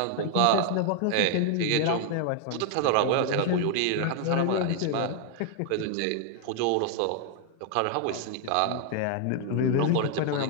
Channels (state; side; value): different; both; correlation 0.00